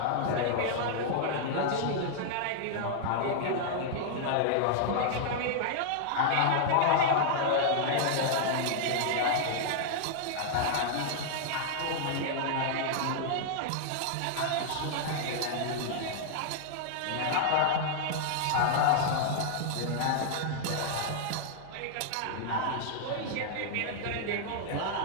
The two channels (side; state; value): both; different; correlation -0.01